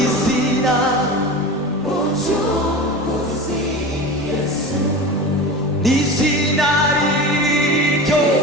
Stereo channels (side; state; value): both; normal; correlation 0.30